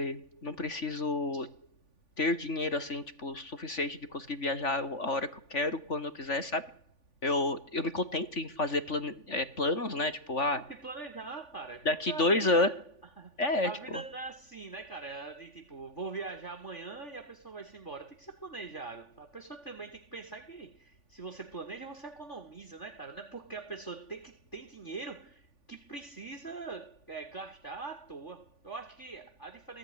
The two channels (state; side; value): late; right; 3.5 ms